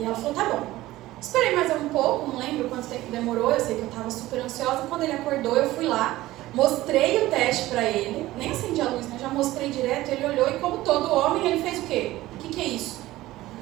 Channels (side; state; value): left; quieter; 16.7 dB